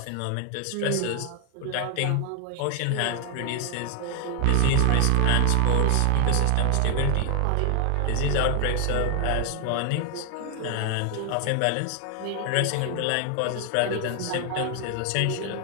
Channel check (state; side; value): different; both; correlation 0.00